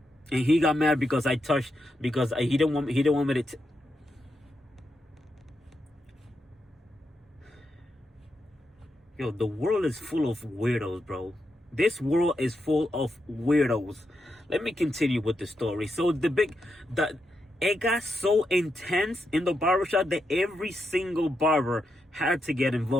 And he got mad because he didn't want me to. Yo, the world is full of weirdos, bro. This world is full of weirdos. Let me continue with the story. So it got so intense in the barbershop that every single barber had to get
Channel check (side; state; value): both; normal; correlation 0.84